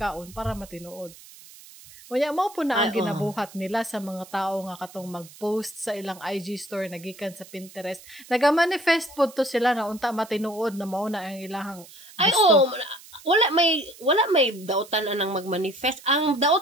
para matinuod. Unya mao po na ang ginabuhat nila sa mga tao nga katong mag-post sa ilang IG story nagikan sa Pinterest. Naga-manifest po to sila na unta matinuod na mao na ang ilahang gusto. Wala may dautan anang magmanifest. Ang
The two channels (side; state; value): right; noise; hiss, 20 dB below the sound